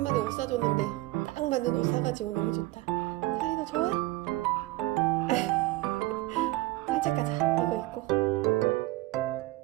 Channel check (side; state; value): left; quieter; 19.0 dB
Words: 옷 사줬는데 딱 맞는 옷 사가지고 너무 좋다. 찰리 너 좋아? 산책 가자. 이거 입고.